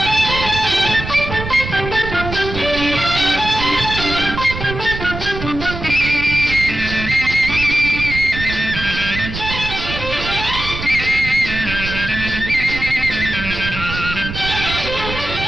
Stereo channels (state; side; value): noise; right; rumble, 7 dB below the sound